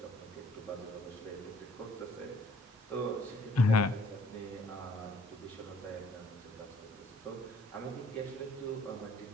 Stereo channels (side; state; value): both; normal; correlation 0.60